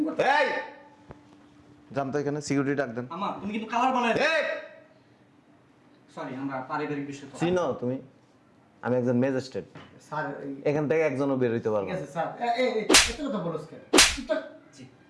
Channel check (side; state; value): both; identical; correlation 1.00